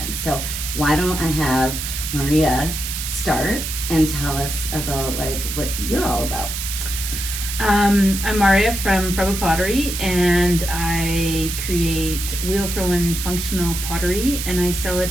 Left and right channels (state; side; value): noise; right; hiss, 5 dB below the sound